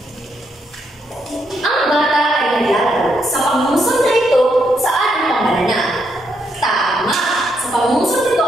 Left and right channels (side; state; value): both; normal; correlation 0.77